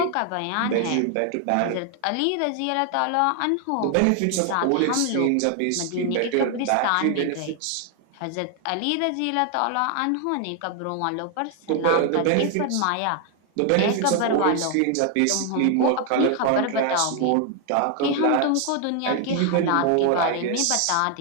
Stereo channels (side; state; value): both; different; correlation 0.00